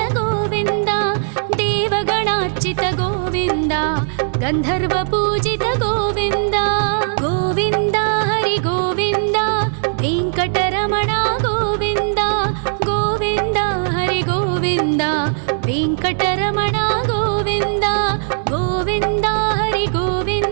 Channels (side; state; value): left; silent; digital silence